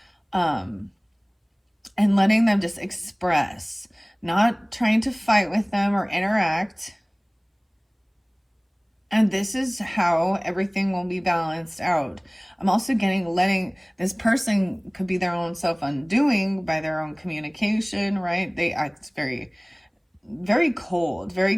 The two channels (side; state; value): both; identical; correlation 1.00